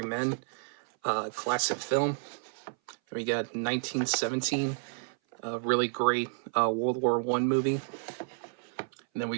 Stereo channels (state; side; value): silent; left; 57 dB below the other